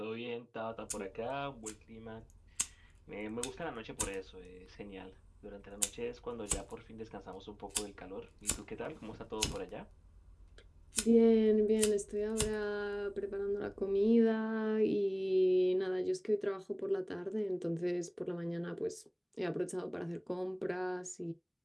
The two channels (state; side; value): identical; both; correlation 1.00